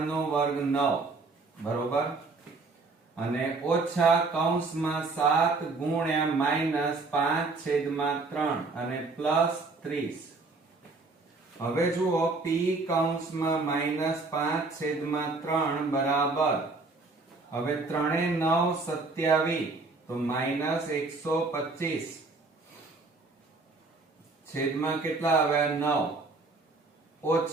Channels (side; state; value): left; quieter; 3.7 dB